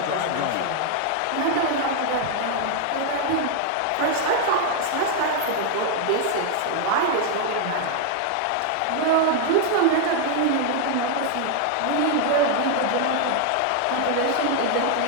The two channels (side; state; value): both; different; correlation 0.00